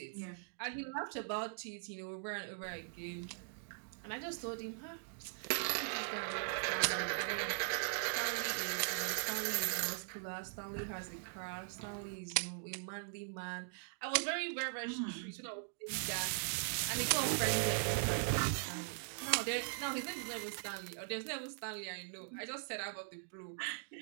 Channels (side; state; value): left; silent; digital silence